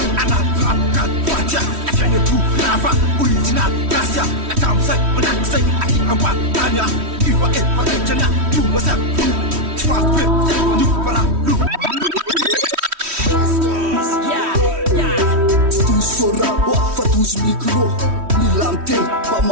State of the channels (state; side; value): late; left; 3.1 ms